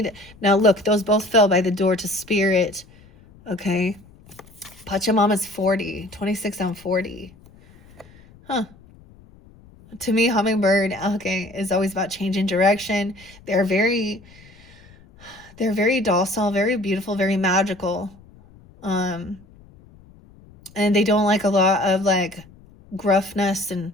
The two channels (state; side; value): noise; left; rumble, 25 dB below the sound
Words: Now, look, those both fell by the door to spirit. Okay. Pachamama's 40. 26 on 40. Huh. To me, hummingbird, okay, is always about changing direction. They're very docile, very beautiful, very magical. And they don't like a lot of like gruffness and